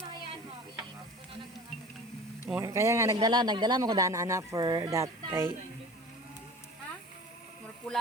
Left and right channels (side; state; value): both; normal; correlation 0.40